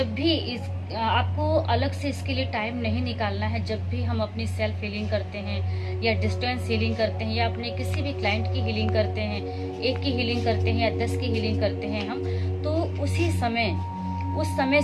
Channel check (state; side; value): identical; both; correlation 1.00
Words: भी आपको अलग से इसके लिए टाइम नहीं निकालना है। जब भी हम अपनी सेल्फ हीलिंग करते हैं या डिस्टेंस हीलिंग करते हैं या अपने किसी भी क्लाइंट की हीलिंग करते हैं, एक की हीलिंग करते हैं या 10 की हीलिंग करते हैं हम, तो उस समय